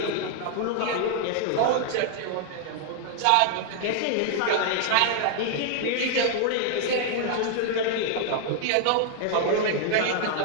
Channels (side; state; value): both; different; correlation 0.00